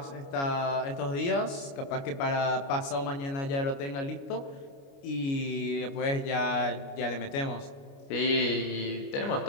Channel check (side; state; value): right; late; 29 ms